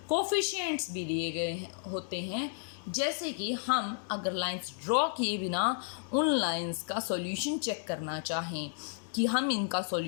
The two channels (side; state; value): right; silent; digital silence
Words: कोफिशिएंट्स भी दिए गए होते हैं, जैसे कि हम अगर लाइंस ड्रॉ किए बिना उन लाइंस का सॉल्यूशन चेक करना चाहें, कि हम इनका